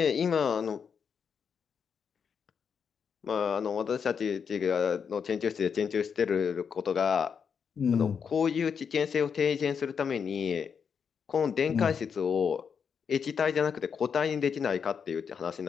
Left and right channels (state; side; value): quieter; right; 6.7 dB